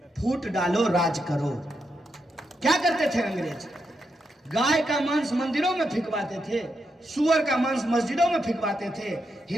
फूट डालो राज करो। क्या करते थे अंग्रेज? गाय का मांस मंदिरों में फिकवाते थे, सुअर का मांस मस्जिदों में फिकवाते थे।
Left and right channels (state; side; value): normal; both; correlation 0.83